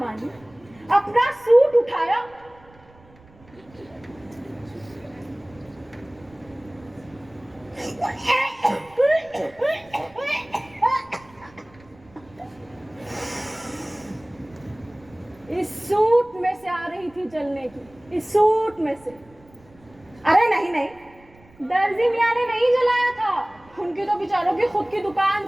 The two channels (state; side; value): noise; right; rumble, 26 dB below the sound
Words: अपना सूट उठाया, इस सूट में से आ रही थी जलने की, इस सूट में से। अरे नहीं नहीं, दर्जी मियाँ ने नहीं जलाया था, उनकी तो बेचारों की खुद की दुकान